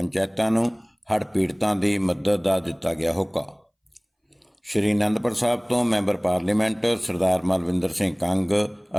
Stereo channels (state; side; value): identical; both; correlation 1.00